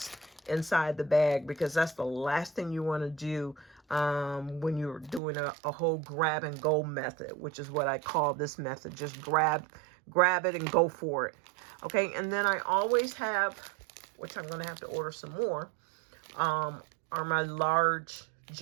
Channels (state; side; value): drops out; left; at 5.2 s